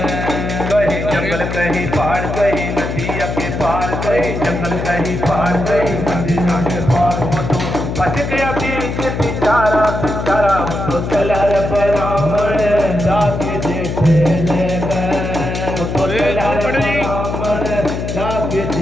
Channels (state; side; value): noise; left; hum, 4 dB below the sound